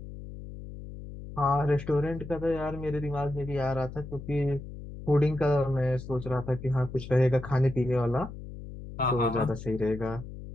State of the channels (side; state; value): left; noise; hum, 12 dB below the sound